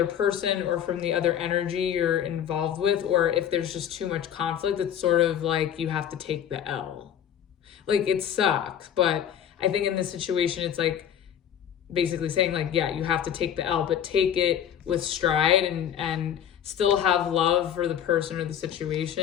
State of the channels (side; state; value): right; quieter; 9.4 dB